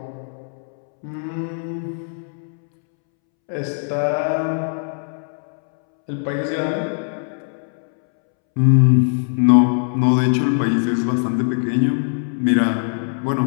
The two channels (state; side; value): silent; right; 65 dB below the other